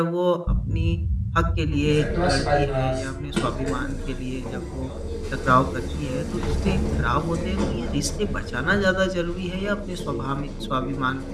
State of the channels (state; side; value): identical; both; correlation 1.00